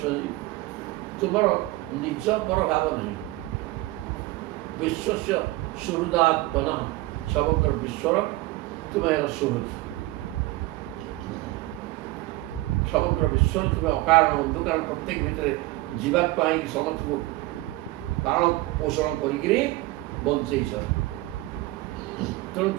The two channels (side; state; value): left; quieter; 19.3 dB